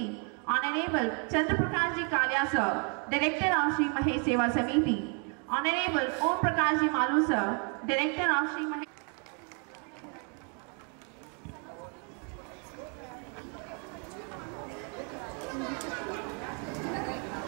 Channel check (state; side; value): quieter; left; 38.0 dB